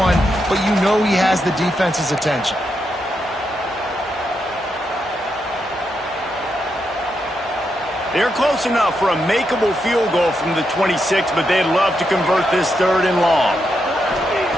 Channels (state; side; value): normal; both; correlation 0.83